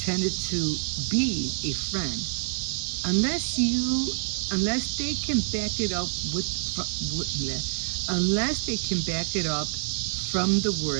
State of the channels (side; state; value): left; silent; digital silence